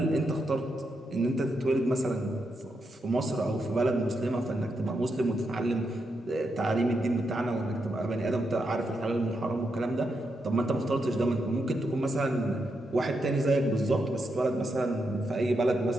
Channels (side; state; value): both; normal; correlation 0.83